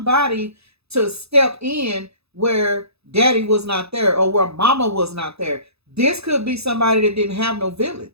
to step in where daddy was not there or where mama was not there. This could be somebody that didn't have no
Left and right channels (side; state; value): left; late; 0.79 ms